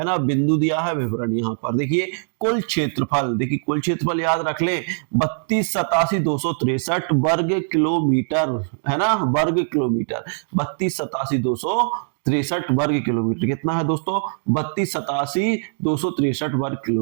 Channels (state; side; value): silent; left; digital silence